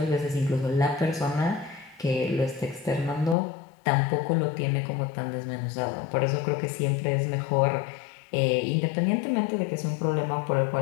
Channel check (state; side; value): drops out; right; at 3.4 s